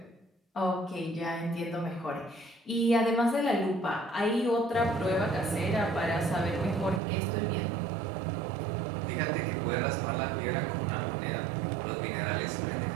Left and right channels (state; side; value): drops out; left; at 7.0 s